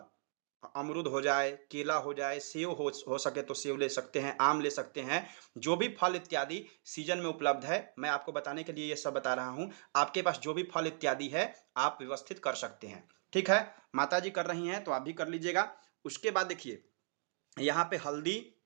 अमरूद हो जाए, केला हो जाए, सेव हो सके तो सेव ले सकते हैं, आम ले सकते हैं, जो भी फल इत्यादि सीजन में उपलब्ध है, मैं आपको बताने के लिए ये सब बता रहा हूँ। आपके पास जो भी फल इत्यादि है आप व्यवस्थित कर सकते हैं। ठीक है, माता जी कर रही हैं तो आप भी कर लीजिएगा। उसके बाद देखिए यहाँ पे हल्दी,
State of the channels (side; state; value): left; silent; digital silence